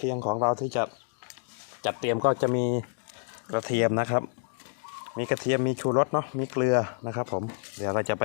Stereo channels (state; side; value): silent; right; digital silence